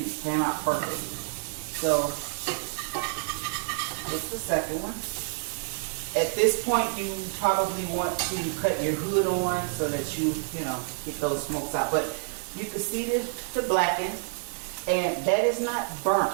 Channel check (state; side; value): silent; left; 59 dB below the other